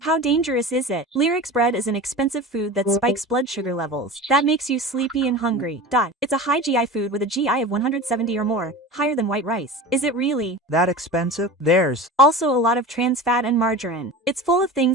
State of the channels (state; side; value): normal; both; correlation 0.32